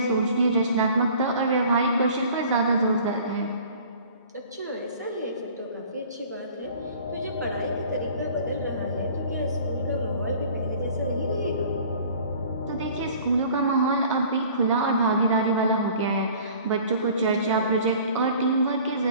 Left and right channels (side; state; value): both; inverted; correlation -0.49